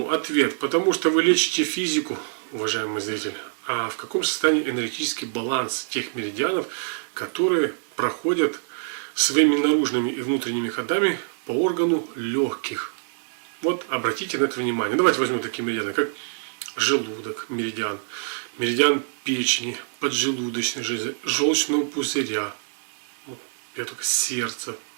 Ответ: потому что вы лечите физику, уважаемый зритель. А в каком состоянии энергетический баланс тех меридианов, которые проходят своими наружными и внутренними ходами по органу легких? Вот обратите на это внимание. Давайте возьмем такие меридианы, как желудок, меридиан, меридиан печени, поджелудочной железы, желчного пузыря, вот, я только сердце.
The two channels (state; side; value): silent; left; 61 dB below the other